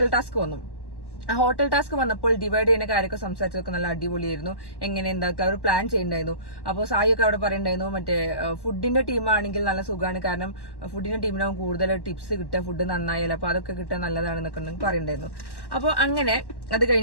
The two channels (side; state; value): right; late; 1.1 ms